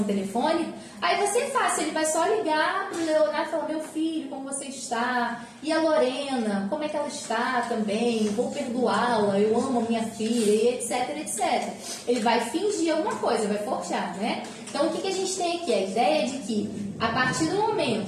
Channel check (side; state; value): both; identical; correlation 1.00